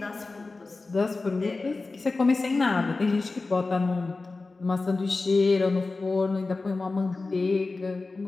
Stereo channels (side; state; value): right; quieter; 3.6 dB